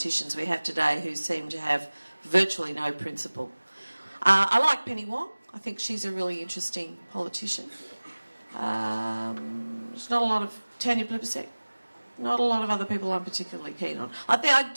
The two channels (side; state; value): both; inverted; correlation -1.00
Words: we have today who seem to have virtually no principle. I like Penny Wong. I think she's a really interesting politician. There's not a lot of Tanya Plibersek. Not a lot of other people I'm particularly keen on. I